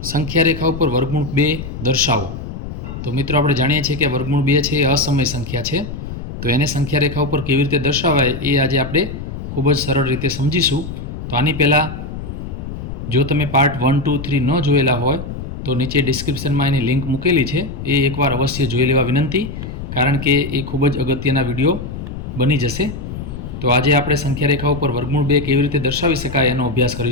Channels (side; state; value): left; noise; rumble, 8 dB below the sound